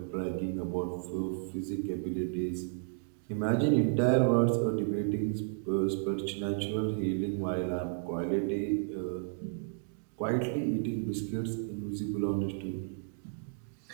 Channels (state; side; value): silent; left; digital silence